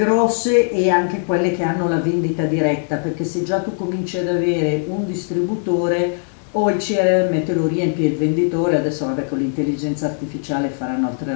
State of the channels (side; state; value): right; silent; 64 dB below the other